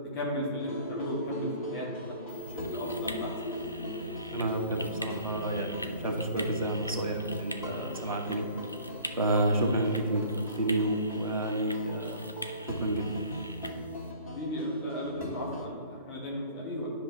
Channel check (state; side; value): inverted; both; correlation -0.49